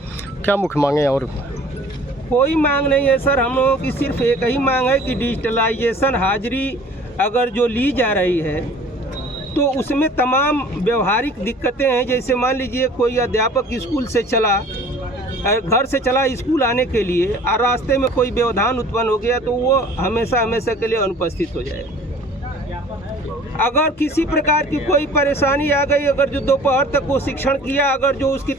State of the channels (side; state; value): both; normal; correlation 0.48